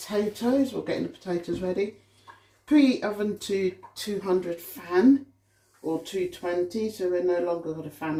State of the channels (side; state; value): both; identical; correlation 1.00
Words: or getting the potatoes ready. Preheat oven to 200 fan or 220, so we're no longer got a fan